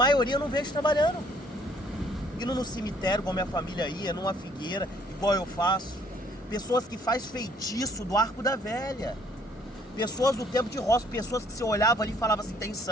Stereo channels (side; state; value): both; normal; correlation 0.62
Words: eu não vejo trabalhando. Indo no cemitério, igual minha família ia, numa figueira, igual eu faço. Pessoas que faz feitiço do Arco da Velha. Pessoas do tempo de roça, pessoas que você olhava ali e falava assim, tem